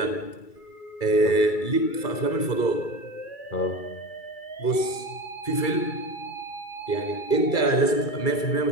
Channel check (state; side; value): late; right; 2.3 ms